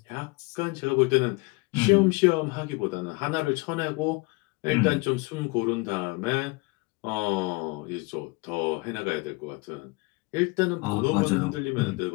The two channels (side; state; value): right; quieter; 26.2 dB